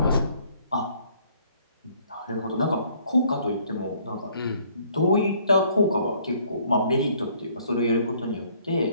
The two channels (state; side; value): inverted; both; correlation -0.62